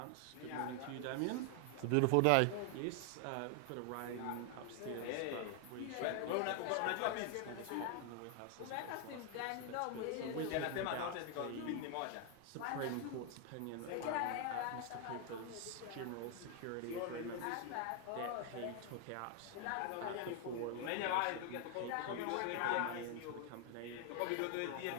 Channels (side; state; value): both; different; correlation 0.00